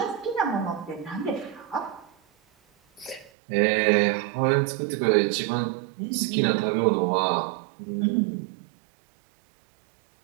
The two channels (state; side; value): drops out; left; at 3.3 s